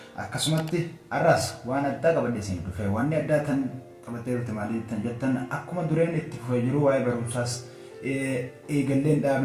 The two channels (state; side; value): identical; both; correlation 1.00